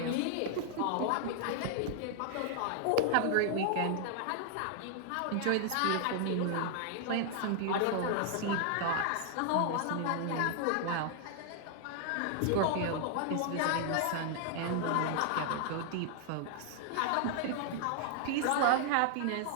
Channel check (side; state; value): both; different; correlation 0.00